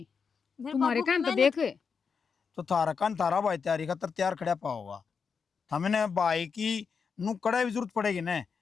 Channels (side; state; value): right; quieter; 5.8 dB